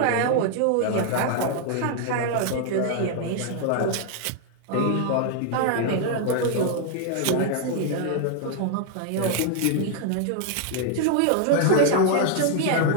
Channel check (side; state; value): both; different; correlation 0.00